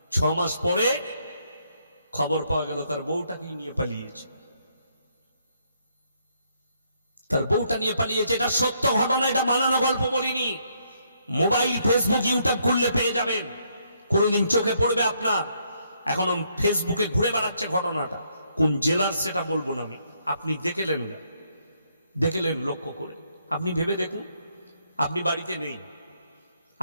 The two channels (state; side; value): inverted; both; correlation -0.73